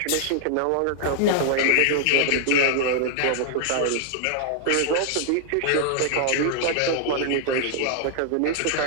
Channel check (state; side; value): different; both; correlation 0.00